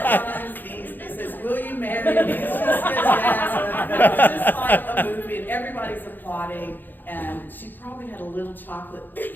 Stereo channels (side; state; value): right; late; 0.090 ms